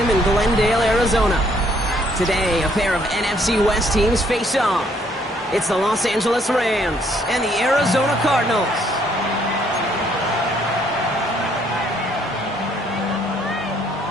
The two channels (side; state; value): both; normal; correlation 0.67